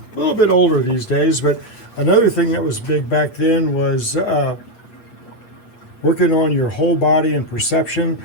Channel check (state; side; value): late; right; 8.6 ms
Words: a little bit older these days, but another thing that was big back then was working on your whole body and perception.